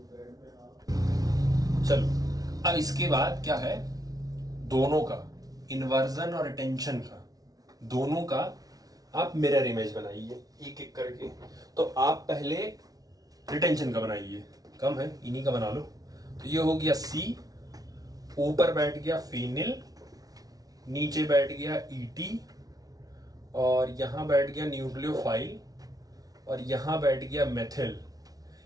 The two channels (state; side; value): late; left; 0.18 ms